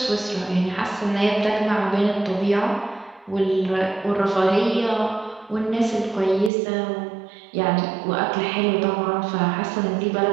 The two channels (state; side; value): drops out; left; at 6.5 s